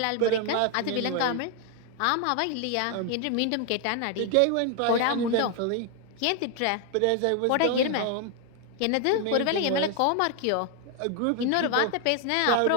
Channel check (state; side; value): different; both; correlation 0.01